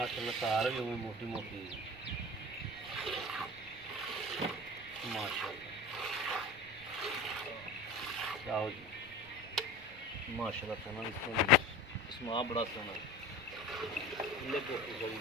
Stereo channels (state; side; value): noise; right; rumble, 21 dB below the sound